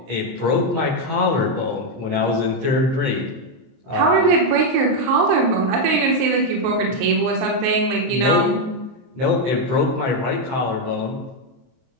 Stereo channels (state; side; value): late; left; 23 ms